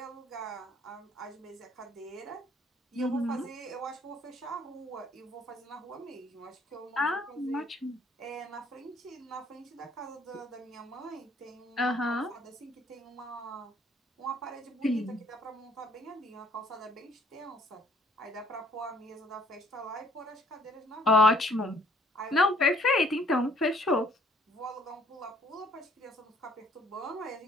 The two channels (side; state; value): both; normal; correlation 0.61